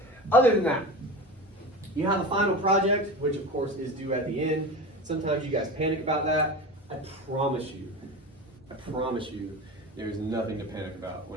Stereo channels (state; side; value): normal; both; correlation 0.28